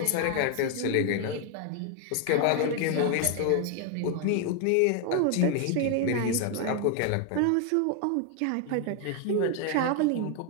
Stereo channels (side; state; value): both; different; correlation 0.00